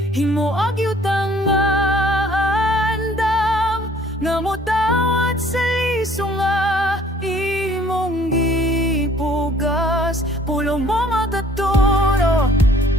himo agyutang nga andam, nga mo tawat sa lisong nga imong gipugas. Pulong mo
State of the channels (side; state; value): both; normal; correlation 0.57